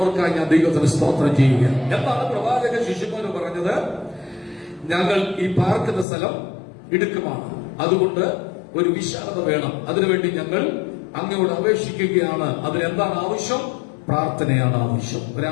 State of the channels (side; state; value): right; drops out; at 6.1 s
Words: ഞാൻ ദൈവത്തിന് സ്തോത്രം ചെയ്യുക. എന്താണ് പ്രവാചക ശിഷ്യന്മാര് പറഞ്ഞത്? ഞങ്ങൾ ഈ പാർക്കുന്ന സ്ഥലം ഇടുക്കമാണ്, അതുകൊണ്ട് ഒരു വിശാലത വേണം. അതിനുവേണ്ടി ഞങ്ങൾ അങ്ങയോട് അപേക്ഷിക്കുകയാണ്. അതിനെന്താണ് ആവശ്യം? പ്രാർത്ഥനയാണ് ആവശ്യം.